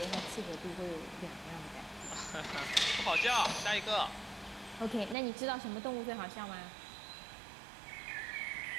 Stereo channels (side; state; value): left; drops out; at 5.2 s